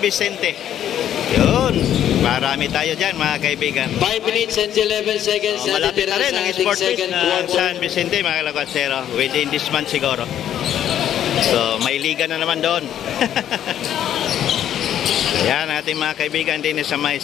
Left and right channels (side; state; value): right; quieter; 10.7 dB